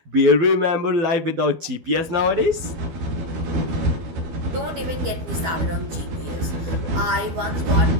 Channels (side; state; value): left; late; 12 ms